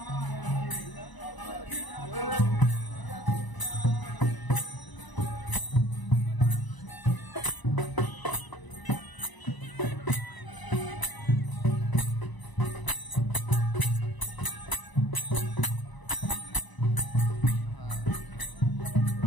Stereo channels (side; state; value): right; late; 1.0 ms